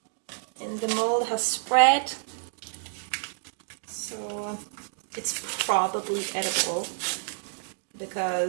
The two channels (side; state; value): left; silent; digital silence